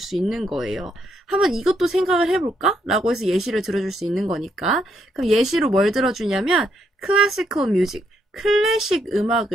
있는 거예요. 한번 이것도 생각을 해볼까? 라고 해서 예시를 들어줄 수 있는 거니까. 그럼 예시로 뭘 들어주냐면 classical music. 클래식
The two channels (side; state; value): both; normal; correlation 0.76